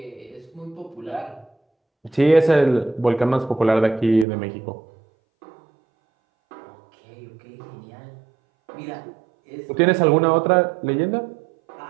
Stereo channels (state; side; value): drops out; left; at 4.2 s